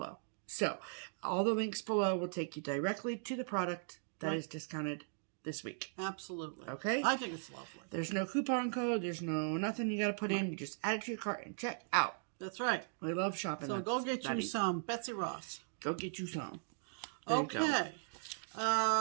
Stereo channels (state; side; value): silent; left; digital silence